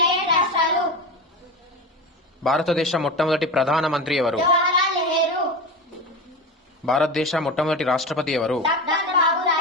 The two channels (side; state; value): both; normal; correlation 0.24